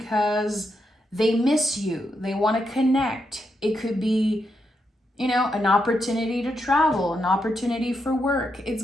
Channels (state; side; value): normal; both; correlation 0.82